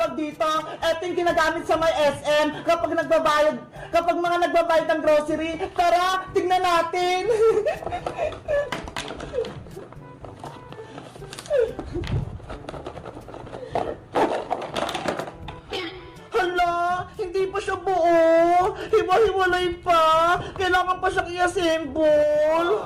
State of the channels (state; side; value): identical; both; correlation 1.00